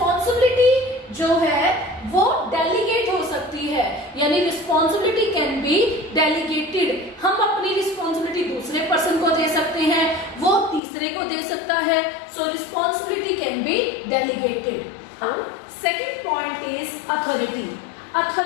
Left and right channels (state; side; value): drops out; right; at 10.8 s